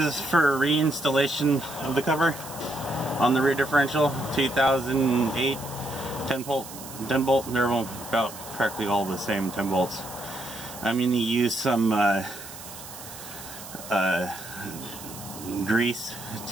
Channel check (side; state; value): right; noise; hiss, 14 dB below the sound